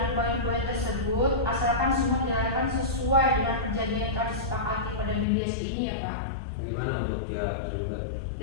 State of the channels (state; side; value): drops out; right; at 5.2 s